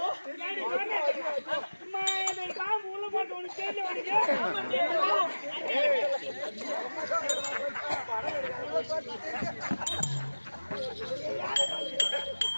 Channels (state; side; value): inverted; both; correlation -1.00